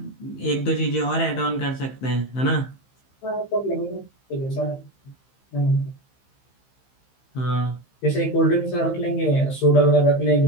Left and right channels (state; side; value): late; right; 15 ms